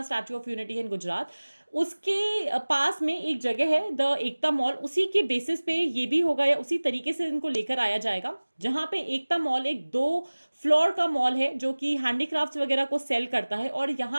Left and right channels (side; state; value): both; inverted; correlation -1.00